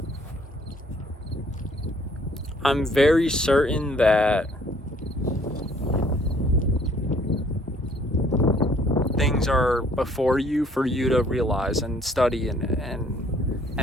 I'm very certain that things are before you for you to realize and study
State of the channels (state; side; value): normal; both; correlation 0.61